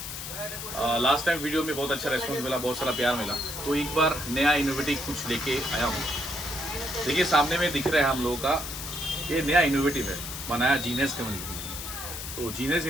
लास्ट टाइम वीडियो में बहुत अच्छा रेस्पॉन्स मिला, बहुत सारा प्यार मिला, तो एक बार नया इनोवेटिव कुछ लेके आया हूँ। देखिए सामने में दिख रहा है हम लोगों का, ये नया इनोवेटिव है, बनाया जीनियस कम्युनिटी ने। तो जीनियस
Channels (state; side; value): noise; left; hiss, 8 dB below the sound